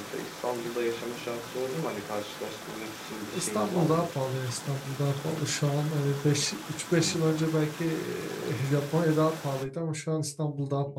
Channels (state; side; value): identical; both; correlation 1.00